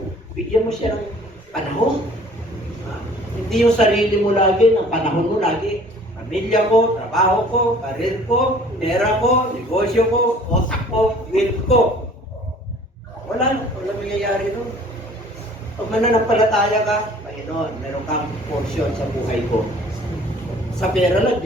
Bigyan mo siya ng panahon. Hindi yung sarili mo lagi, ng panahon mo lagi. Pamilya ko, trabaho ko, karir ko, pera ko, negosyo ko, otak ko, will ko. Wala mangyayari nun. Pag mananampalataya ka, Panginoon, meron kang portion sa buhay ko. Sa pera lang,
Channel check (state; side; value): normal; both; correlation 0.52